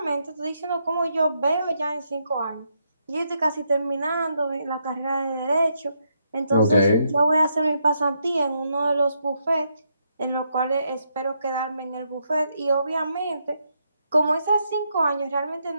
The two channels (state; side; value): inverted; both; correlation -0.79